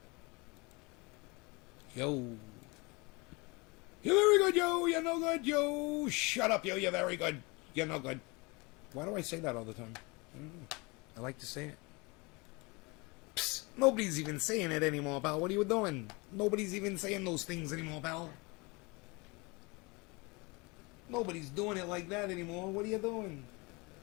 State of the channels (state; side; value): quieter; right; 26.9 dB